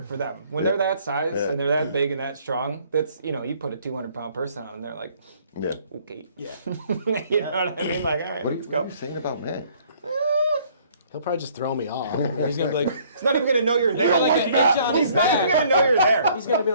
for them. When they're that size and they're that big and that strong, that's, you put a 200-pound person on and they're like, yeah. okay. Yeah. You know what I mean? Like, all right, What are let's go. you saying about Matt? He'll probably just throw me off. He's gonna be like, He's not even going to know you're there. like an itch on his He's not even back. going to know you're there. He's gonna be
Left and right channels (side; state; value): both; inverted; correlation -0.60